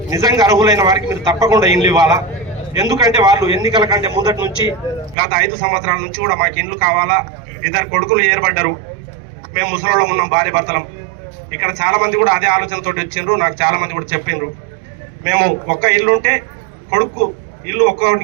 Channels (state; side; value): drops out; left; at 5.2 s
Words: నిజంగా అర్హులైన వారికి మీరు తప్పకుండా ఇండ్లు ఇవ్వాలా. ఎందుకంటే వాళ్ళు ఎన్నికల కంటే ముందటి నుంచి గత 5 సంవత్సరాల నుంచి కూడా మాకు ఇండ్లు కావాలా, 2 కొడుకులు ఏర్పడ్డారు, మేము ముసలోళ్ళం ఉన్నాం, భార్య భర్తలం. ఇక్కడ చాలా మంది కూడా అదే ఆలోచనతో వచ్చిండ్రు. నాకు చాలా మంది కూడా చెప్పిండ్రు, మేము ఒక్క ఇల్లు ఉంటే కొడుకు ఇల్లు